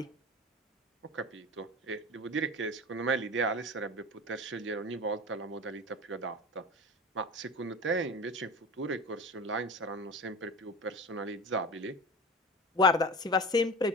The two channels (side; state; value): both; normal; correlation 0.31